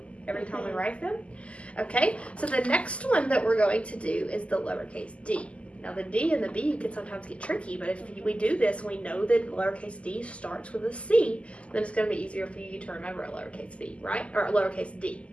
every time we write them? Okay, so the next one that we're going to do is the lowercase d. Now, the D and the B can sometimes get tricky, but if we do this, we know that lowercase d starts with a C, then it's going to be easier for you to remember a lowercase b, right? Or a lowercase d.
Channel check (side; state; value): right; late; 0.059 ms